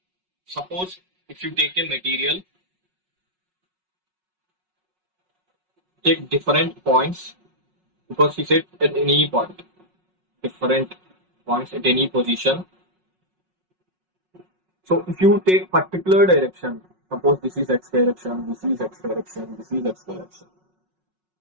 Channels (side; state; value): left; late; 5.4 ms